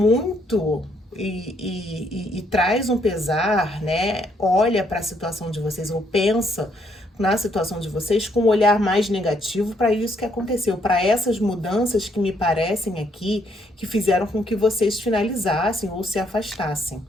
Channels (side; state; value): both; normal; correlation 0.71